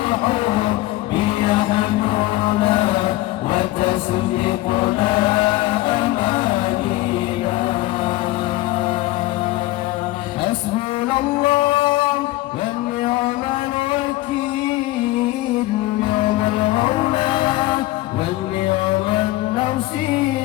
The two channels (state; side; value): quieter; right; 18.2 dB